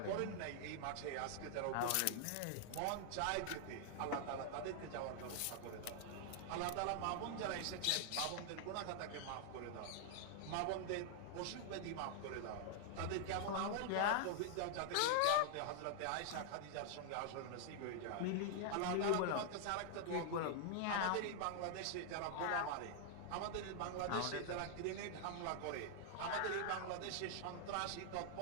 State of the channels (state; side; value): different; both; correlation -0.01